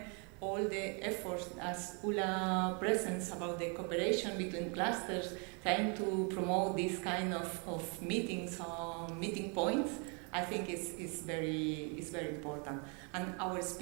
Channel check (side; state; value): left; quieter; 35.4 dB